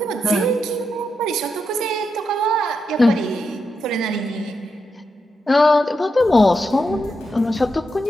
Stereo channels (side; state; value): both; normal; correlation 0.85